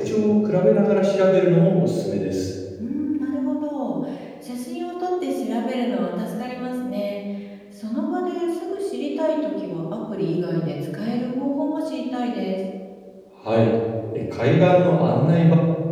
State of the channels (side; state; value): both; identical; correlation 1.00